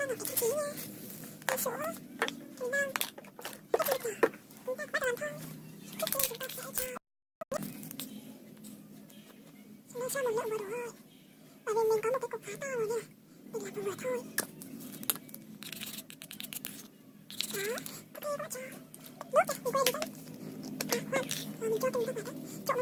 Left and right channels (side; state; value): both; identical; correlation 1.00